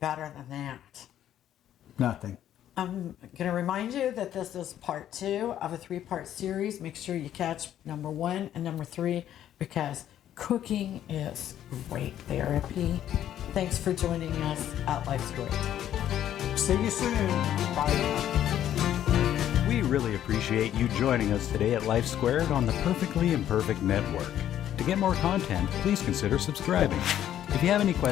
than that? Nothing. I'm going to remind you that this is part 2 of a 3-part series. Make sure you catch number 1 and number 3 because cooking is great therapy. Thanks for joining us at Life's Great. See you soon. Bye. We really appreciate you joining us today at Life Squared on the Perfectly Imperfect Network. To get more content, please consider subscribing. If you have any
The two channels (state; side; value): quieter; right; 11.2 dB